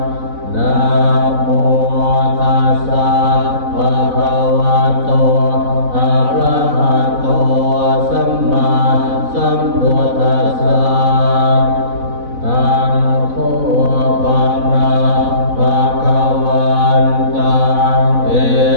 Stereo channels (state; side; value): late; left; 4.0 ms